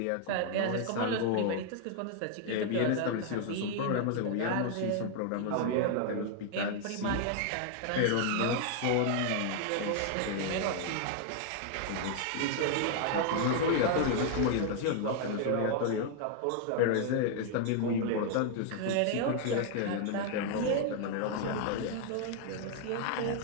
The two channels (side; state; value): both; different; correlation 0.00